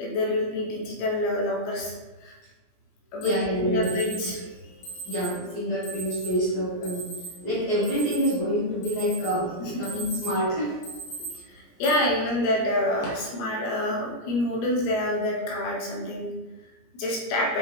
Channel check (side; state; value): right; late; 17 ms